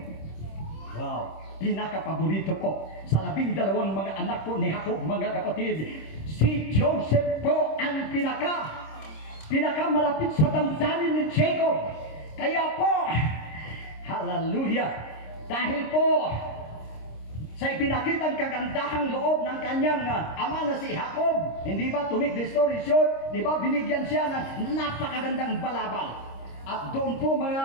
Wow, pinakapaborito po sa 12 mga anak po ni Jacob mga kapatid. Si Joseph po ang pinakamalapit sa damdamin ni Jacob. Kaya po, hallelujah, dahil po sa ipinakitang kagandahang loob ng kanyang ama na si Jacob, hindi ba, to make the story short, di ba, binigyan siya ng napakagandang balabal. At doon po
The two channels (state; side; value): late; right; 26 ms